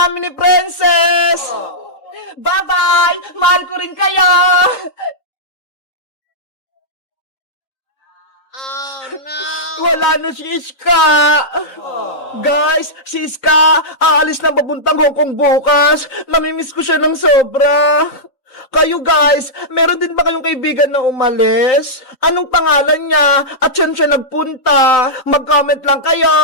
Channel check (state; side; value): late; right; 3.9 ms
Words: ni Princess! Bye-bye! Mahal ko rin kayo! Oh no! Wala na si Iska! Guys, si Iska, aalis na papuntang Hong Kong bukas. Namimiss ko siya ng sobra. Kayo guys, meron din ba kayong kaibigan na umalis? Anong pangalan niya? At saan siya nagpunta? Mag-comment lang